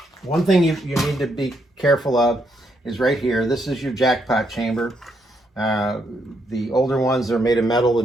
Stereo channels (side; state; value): both; normal; correlation 0.76